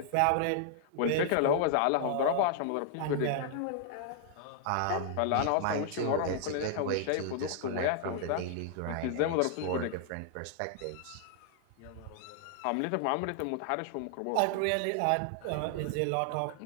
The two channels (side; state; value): both; different; correlation -0.01